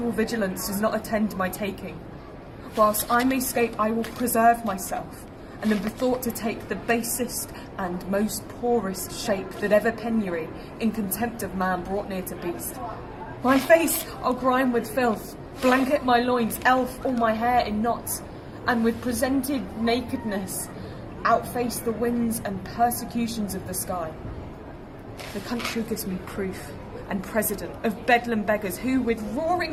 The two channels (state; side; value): identical; both; correlation 1.00